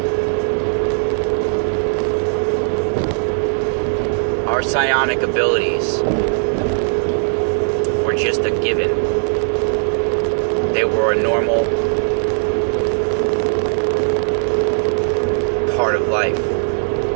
Our psionic abilities were just a given. They were a normal part of life.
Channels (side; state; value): left; silent; 57 dB below the other